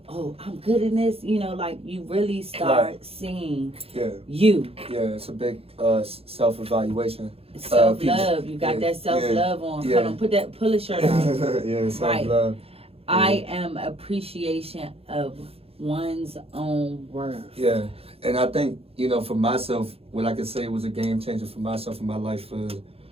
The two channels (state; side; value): late; left; 0.28 ms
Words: I'm good in this. Like, you really start seeing you. Yeah, it's a big self-evaluation. Self-love. You got that self-love on. Yeah. Hold on, pull a shirt out. Yeah, self-love. I am appreciation of one's own worth. Yeah, and I think, you know, for myself, what I could say was a game changer for myself in my life for